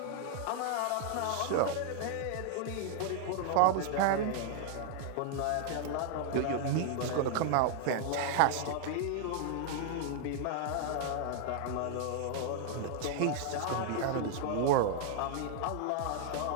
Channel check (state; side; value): different; both; correlation 0.00